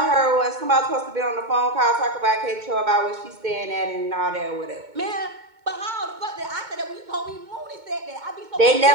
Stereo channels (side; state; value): left; late; 2.2 ms